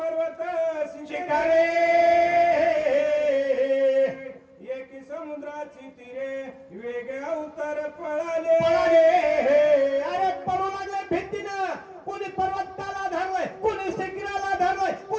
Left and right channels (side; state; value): both; identical; correlation 1.00